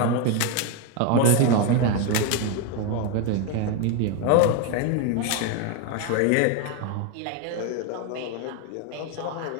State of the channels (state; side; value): different; both; correlation 0.02